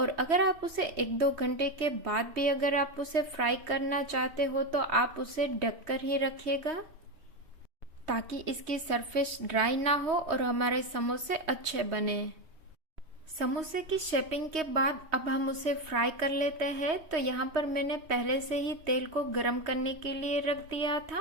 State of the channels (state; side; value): late; left; 3.2 ms